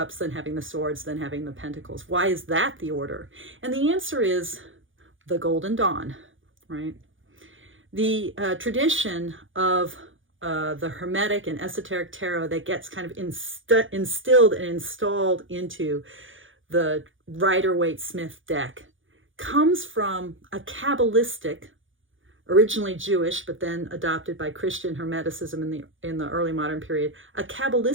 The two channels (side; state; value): left; late; 0.57 ms